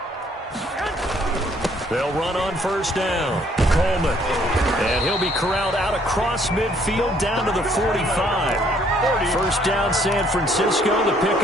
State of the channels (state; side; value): normal; both; correlation 0.64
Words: They'll run on first down. Coleman. And he'll be corralled out across midfield down to the 45. First down, San Francisco. The